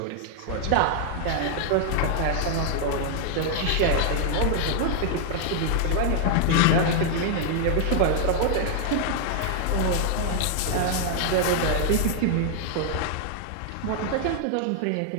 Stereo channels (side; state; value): both; different; correlation 0.00